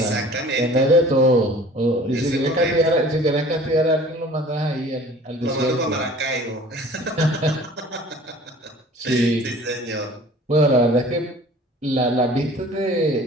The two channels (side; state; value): both; normal; correlation 0.47